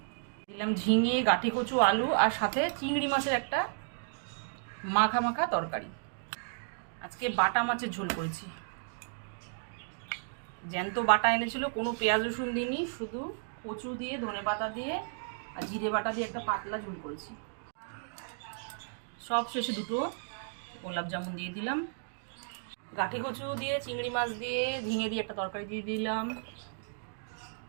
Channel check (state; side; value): silent; left; digital silence